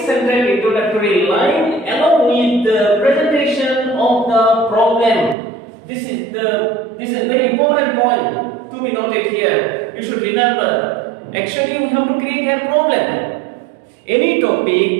introductory line along with the presentation of the problem. This is a very important point to be noted here. You should remember. Actually, we have to create a problem. Any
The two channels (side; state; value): left; drops out; at 5.4 s